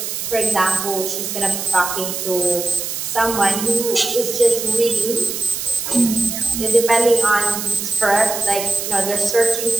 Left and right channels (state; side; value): noise; right; hiss, 4 dB below the sound